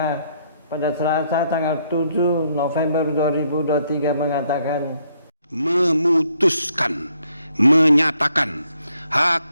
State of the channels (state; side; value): inverted; both; correlation -0.72